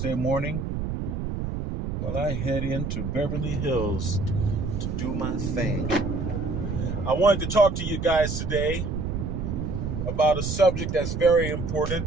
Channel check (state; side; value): noise; right; rumble, 3 dB below the sound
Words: morning? Well, I head into Beverly Hills to do my thing. I wanted to talk to you guys today about a subject that's very